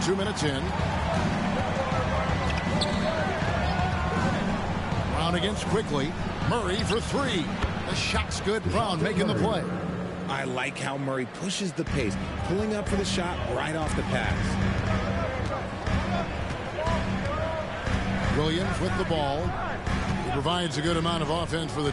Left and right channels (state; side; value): identical; both; correlation 1.00